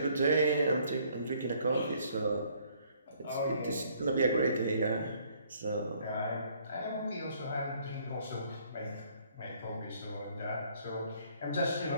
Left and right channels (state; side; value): inverted; both; correlation -0.62